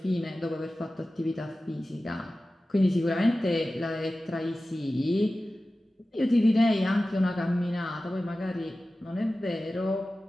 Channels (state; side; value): normal; both; correlation 0.95